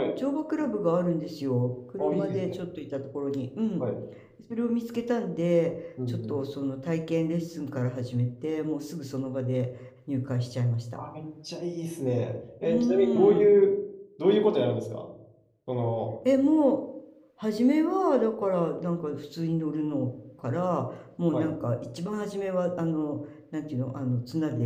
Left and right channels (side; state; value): both; identical; correlation 1.00